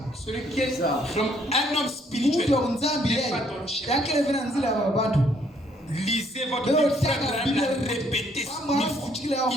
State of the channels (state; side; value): normal; both; correlation 0.67